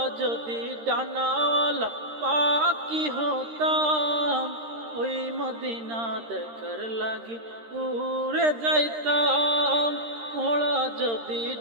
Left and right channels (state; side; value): late; left; 13 ms